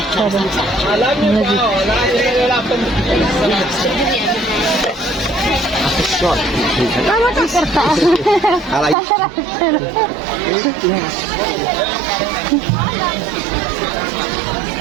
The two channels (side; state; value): left; drops out; at 9.0 s